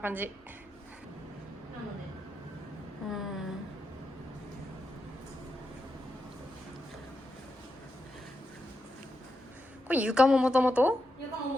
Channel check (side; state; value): both; normal; correlation 0.86